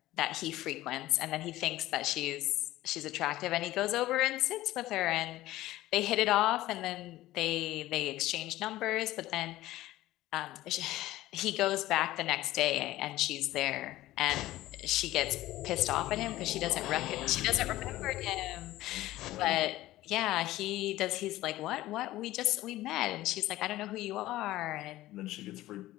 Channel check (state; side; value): quieter; right; 16.1 dB